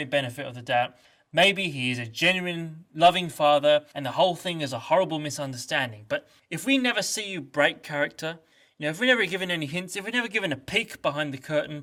benefit of the doubt, maybe he is a genuine, loving father and the whole thing is a horrible misunderstanding. But if we never see you break character, if we're never given any hints, if we're never given a peek behind the curtain,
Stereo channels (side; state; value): both; identical; correlation 1.00